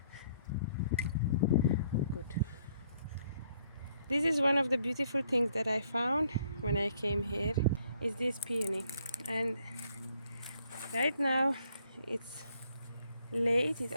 Good. This is one of the beautiful things that I found when I came here, is this peony. And right now it's late, it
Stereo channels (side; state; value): both; inverted; correlation -0.68